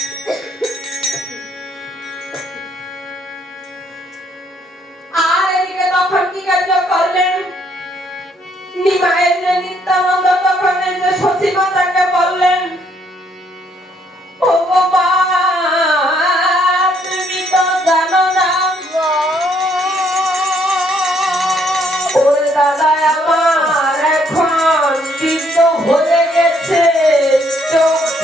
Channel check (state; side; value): normal; both; correlation 0.69